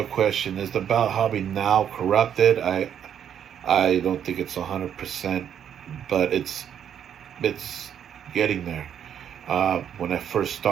question is, the belt hobby now corrupted? I don't think it's 100%, but it's getting there. When I first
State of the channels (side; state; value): left; quieter; 9.1 dB